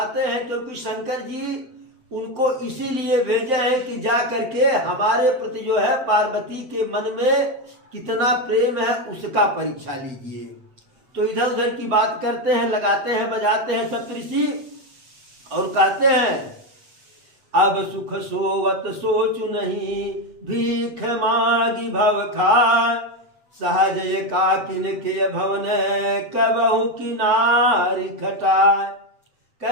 हैं, क्योंकि शंकर जी उनको इसीलिए भेजे हैं कि जा करके हमारे प्रति जो है पार्वती के मन में कितना प्रेम है उसका परीक्षा लीजिए। तो इधर उधर की बात करते हैं, लगाते हैं, बजाते हैं सप्तऋषि, और कहते हैं अब सुख सोवत सोचु नहीं, भीख मागी भव खाय। सहज एकाकिन के भवन कबहु किनारी खटाय।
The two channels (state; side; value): late; left; 8.0 ms